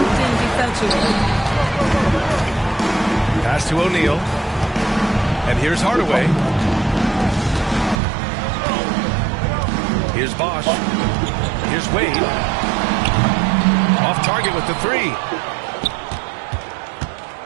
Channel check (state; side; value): drops out; left; at 8.0 s